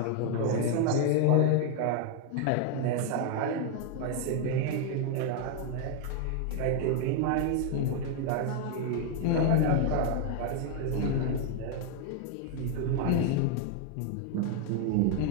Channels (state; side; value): different; both; correlation 0.00